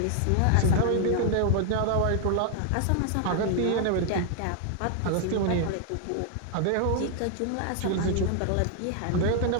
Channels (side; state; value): both; different; correlation 0.00